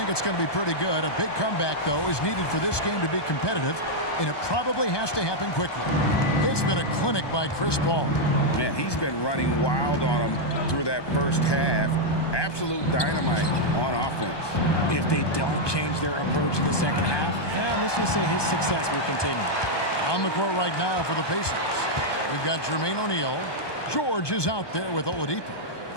it's going to be pretty good. A big comeback, though, is needed for this game to be competitive, and it probably has to happen quickly. It's been a clinic by Chris Paul. Man, he's been running wild on him through that first half. Absolute dynamite on offense. If they don't change their approach in the second half, let's just say his success will continue. On the court right now for the Pacers, we've got Jermaine O'Neal. George is out there with Oladipo.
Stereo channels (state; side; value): late; right; 1.2 ms